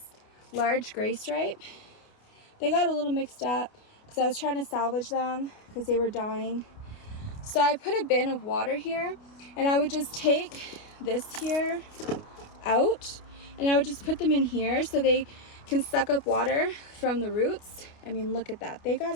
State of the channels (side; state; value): right; late; 29 ms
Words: large gray stripe. They got a little mixed up because I was trying to salvage them because they were dying. So I put a bin of water here, and I would just take this here out, and I would just put them in here so they can suck up water from the roots. I mean, look at that. They got